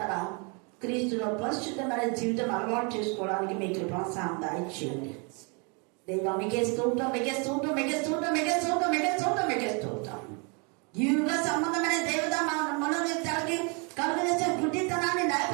క్రీస్తులో పరిశుద్ధమైన జీవితం అలవాటు చేసుకోవడానికి మీకు ప్రోత్సాహం దాయిచేయండి. దేవా మీకే స్తోత్రం, మీకే స్తోత్రం, మీకే స్తోత్రం, మీకే స్తోత్రం, మీకే స్తోత్రం, మీకే స్తోత్రం. యుగ సంబంధమైన దేవత మనోనేత్రాలకి కలుగజేసే గుడ్డితనాన్ని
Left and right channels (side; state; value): left; quieter; 34.0 dB